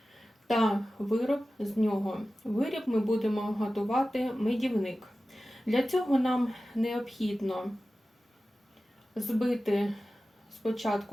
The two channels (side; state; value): both; normal; correlation 0.95